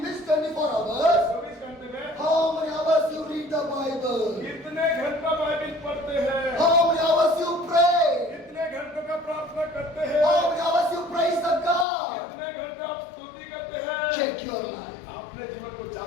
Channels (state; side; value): drops out; right; at 11.9 s